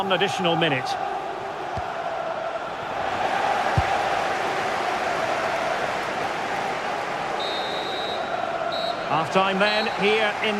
additional minute. Half-time then here in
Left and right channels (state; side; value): identical; both; correlation 1.00